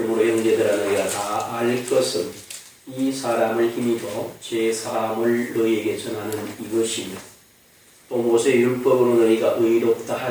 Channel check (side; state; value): both; identical; correlation 1.00